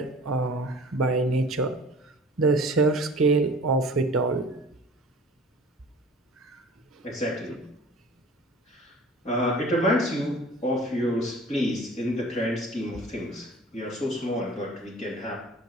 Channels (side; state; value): both; normal; correlation 0.45